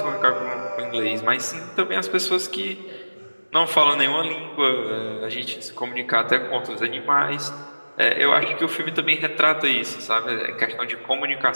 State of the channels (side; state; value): both; inverted; correlation -1.00